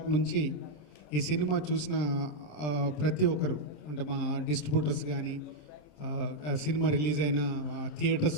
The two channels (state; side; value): late; right; 27 ms